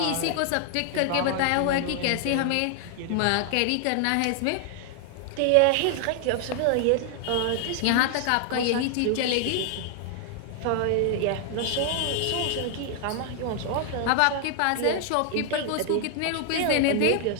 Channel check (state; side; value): different; both; correlation 0.00